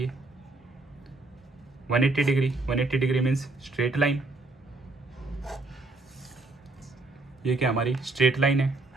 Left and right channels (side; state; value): left; quieter; 3.3 dB